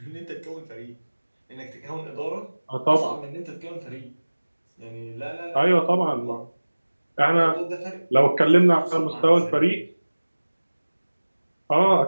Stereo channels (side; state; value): both; inverted; correlation -1.00